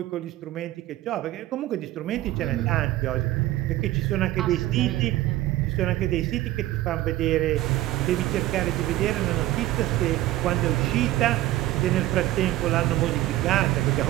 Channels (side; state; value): left; quieter; 15.6 dB